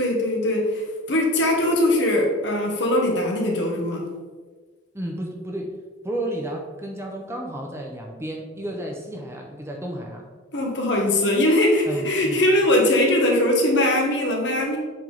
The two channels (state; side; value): normal; both; correlation 0.31